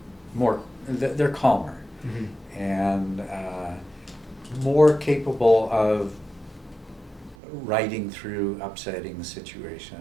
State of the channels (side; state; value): left; drops out; at 7.4 s